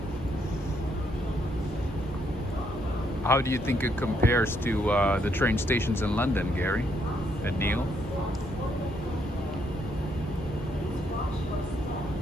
How do you think it compares to the train stations in London, Gary and Neil?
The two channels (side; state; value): both; normal; correlation 0.74